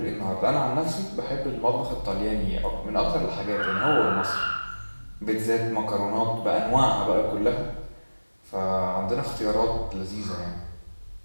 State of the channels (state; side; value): inverted; both; correlation -1.00